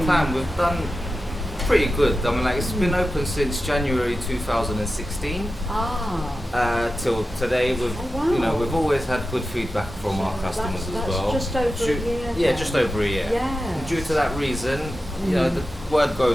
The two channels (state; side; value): normal; both; correlation 0.93